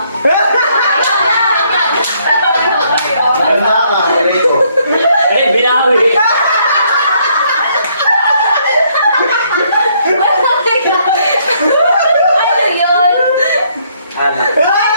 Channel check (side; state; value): both; inverted; correlation -0.69